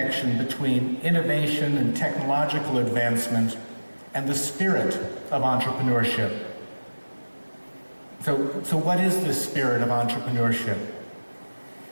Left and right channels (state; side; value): inverted; both; correlation -1.00